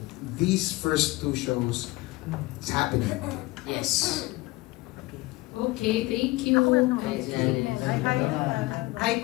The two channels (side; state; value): right; quieter; 20.7 dB